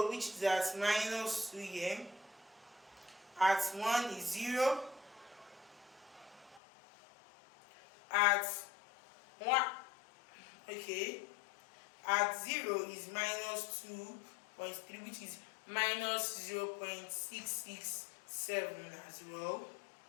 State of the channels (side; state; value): right; drops out; at 6.6 s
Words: which is at minus 2 here. At 1 is 0. At 1, okay. At 0 is minus 2.3, which is minus 0.667 as well.